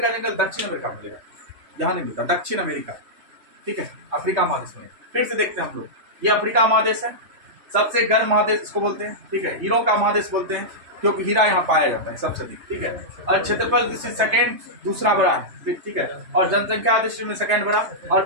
जंगल दक्षिण अमेरिका में मिलेगा, यहाँ नहीं मिलता, दक्षिण अमेरिका, ठीक है, अफ्रीका महादेश में। फिर से देखते हैं हम लोग, ये अफ्रीका महादेश है, सबसे गर्म महादेश इसको बोलते हैं, ठीक है। हीरो का महादेश बोलते हैं क्योंकि हीरा यहाँ पाया जाता है सबसे अधिक, ठीक है। और क्षेत्रफल दृष्टि सेकेंड दूसरा बड़ा है, ठीक है। और जनसंख्या दृष्टि में सेकेंड बड़ा। और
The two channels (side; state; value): left; late; 3.3 ms